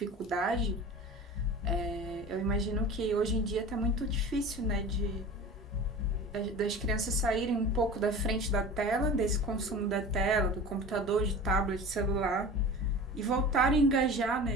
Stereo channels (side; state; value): both; normal; correlation 0.36